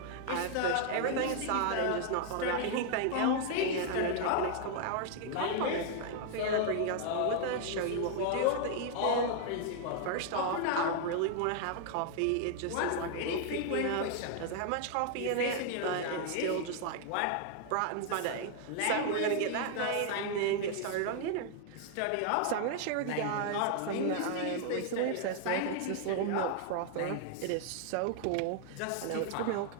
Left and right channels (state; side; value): different; both; correlation 0.00